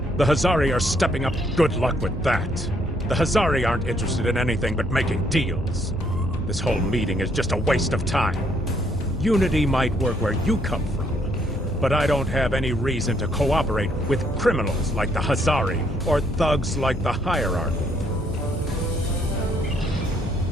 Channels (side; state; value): both; normal; correlation 0.70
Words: The Hazari are stepping up. Good luck with that. The Hazari aren't interested in anything but making deals. This whole meeting is just a waste of time. Unity might work where you come from, but I don't have any reason to cooperate with criminals like the Hazari or thugs like the hierarchy.